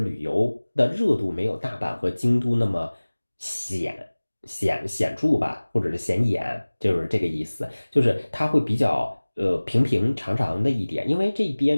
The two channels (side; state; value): both; inverted; correlation -1.00